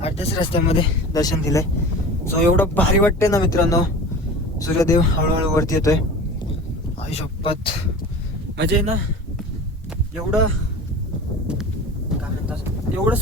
रस्त्यामध्ये दर्शन दिलंय. सो एवढं भारी वाटतंय ना मित्रांनो. सूर्यदेव हळूहळू वरती येतोय. आई शपथ म्हणजे ना एवढं काय म्हणतात, एवढं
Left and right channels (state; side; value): normal; both; correlation 0.36